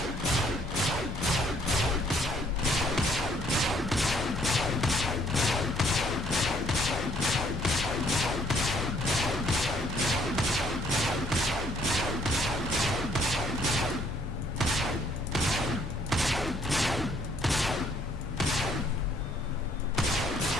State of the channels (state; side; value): normal; both; correlation 0.65